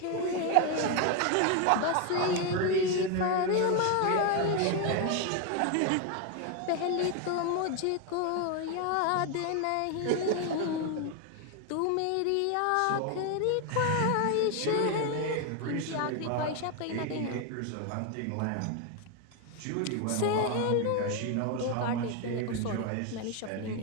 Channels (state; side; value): different; both; correlation 0.01